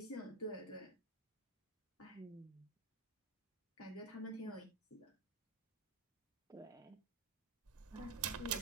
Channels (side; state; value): left; quieter; 3.5 dB